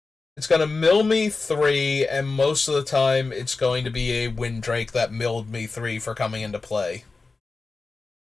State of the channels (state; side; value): quieter; right; 3.9 dB